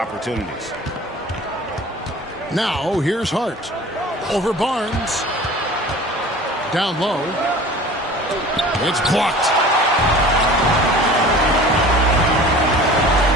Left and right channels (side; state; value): both; normal; correlation 0.42